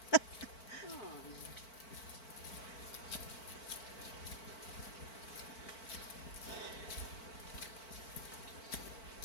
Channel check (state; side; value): late; right; 4.5 ms